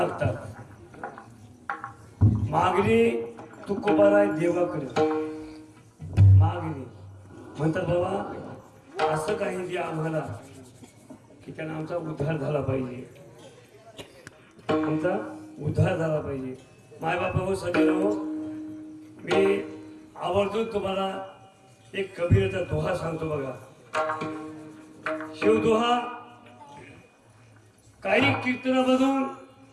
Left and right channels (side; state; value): both; identical; correlation 1.00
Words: मागणी तुकोबाराय देवाकडे मागणी म्हणतात बाबा असं काही द्या आम्हाला की त्यांना आमचा उद्धार झाला पाहिजे. आमचा उद्धार झाला पाहिजे. मायबाप हो सगळे हो मी आवर्जून तुम्हाला एक कबीरचा दोहा सांगतो बघा. शिवदोहा काही कीर्तनामधून